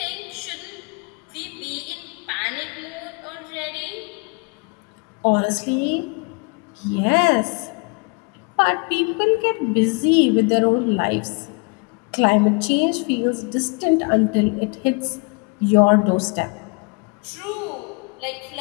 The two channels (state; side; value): quieter; right; 32.0 dB